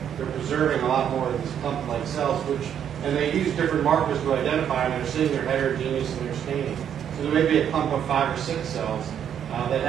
they're preserving a lot more of these clump-like cells, and they use different markers to identify them. They're seeing their heterogeneous and their staining. So there may be a clump of 5 or 6 cells that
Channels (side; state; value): left; quieter; 9.0 dB